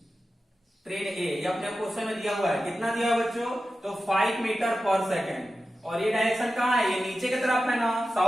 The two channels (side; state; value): both; normal; correlation 0.93